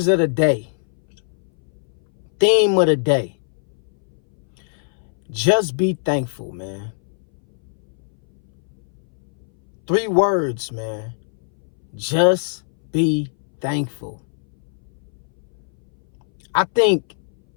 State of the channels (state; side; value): silent; right; 60 dB below the other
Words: of the day. Theme of the day. Just be thankful, man. 3 words, man. Just be thankful. I think